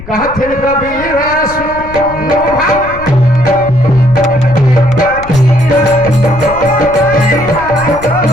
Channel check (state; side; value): noise; left; rumble, 15 dB below the sound